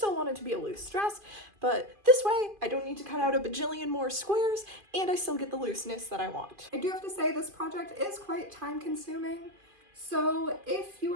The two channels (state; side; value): late; left; 2.5 ms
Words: want it to be a loose dress, but this way I don't need to cut out a bajillion more squares and I still get the looseness that I want. I do have to say this project is quite time consuming, so if you